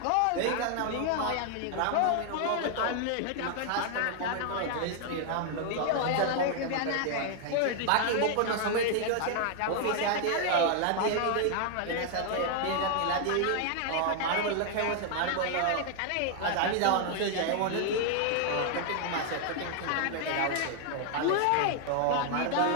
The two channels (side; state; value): both; different; correlation 0.00